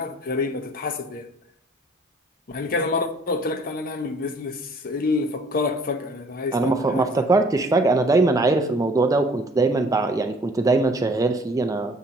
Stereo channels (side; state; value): both; normal; correlation 0.55